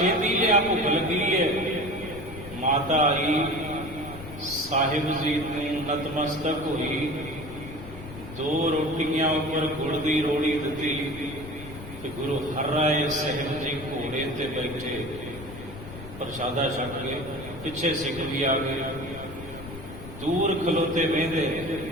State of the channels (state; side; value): noise; left; rumble, 13 dB below the sound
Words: ਲਿਆ, ਭੁੱਖ ਲੱਗੀ ਹੈ। ਮਾਤਾ ਆਈ, ਸਾਹਿਬ ਜੀ ਨੂੰ ਨਤਮਸਤਕ ਹੋਈ, 2 ਰੋਟੀਆਂ ਉੱਪਰ ਗੁੜ ਦੀ ਰੋੜੀ ਦਿੱਤੀ ਤੇ ਗੁਰੂ ਹਰਿਰਾਏ ਸਾਹਿਬ ਜੀ ਘੋੜੇ ਤੇ ਬੈਠੇ ਪ੍ਰਸ਼ਾਦਾ ਛਕ ਕੇ। ਪਿੱਛੇ ਸਿੱਖ ਵੀ ਆ ਗਏ, ਦੂਰ ਖਲੋਤੇ ਵੇਂਦੇ,